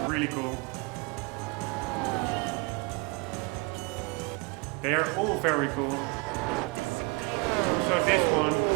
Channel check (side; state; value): left; quieter; 29.5 dB